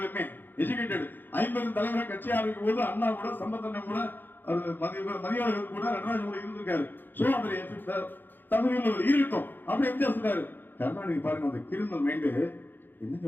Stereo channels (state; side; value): late; right; 0.093 ms